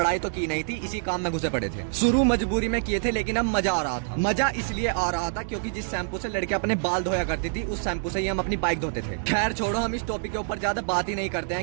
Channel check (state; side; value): silent; left; digital silence